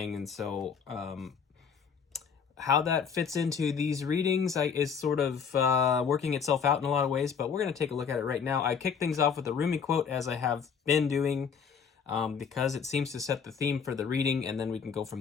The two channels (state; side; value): quieter; right; 6.6 dB